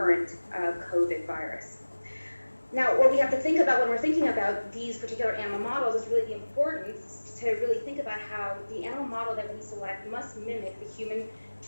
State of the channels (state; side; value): inverted; both; correlation -1.00